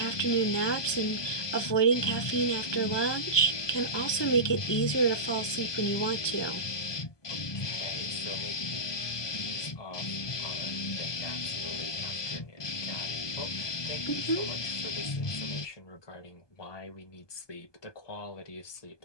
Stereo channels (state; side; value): late; right; 1.2 ms